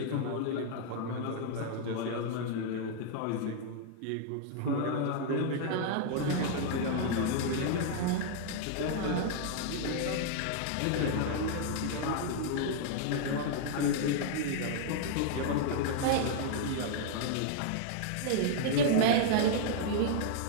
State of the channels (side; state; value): both; different; correlation -0.01